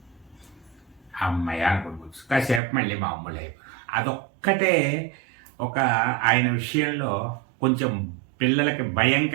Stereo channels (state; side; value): drops out; left; at 2.6 s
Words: అమ్మాయి అనుకుంటు కాసేపు మళ్ళీ మామూలు అయిపోయి. అదొక్కటే ఒక ఆయన విషయంలో కొంచెం పిల్లలకి భయం